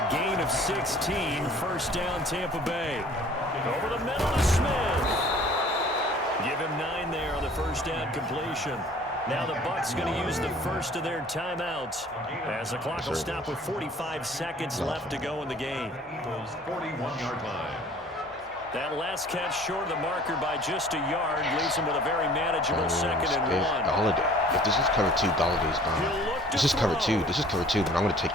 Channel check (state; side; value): normal; both; correlation 0.51